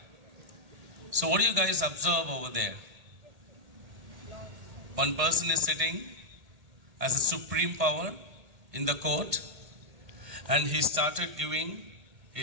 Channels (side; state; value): left; late; 1.8 ms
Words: So what do you guys observe over there? One person is sitting as a supreme power in the court, and he started giving